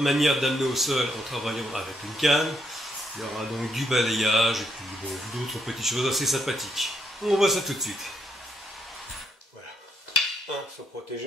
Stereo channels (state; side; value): normal; both; correlation 0.76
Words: d'amener au sol en travaillant avec une canne. Il y aura donc du balayage et puis bon, d'autres petites choses assez sympathiques. On voit ça tout de suite. Voilà. Se